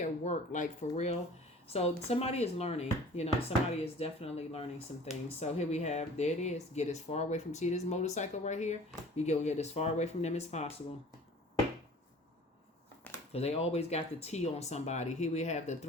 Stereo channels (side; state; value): both; normal; correlation 0.46